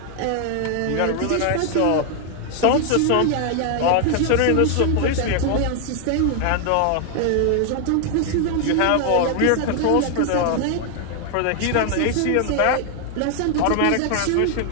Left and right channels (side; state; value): both; different; correlation 0.00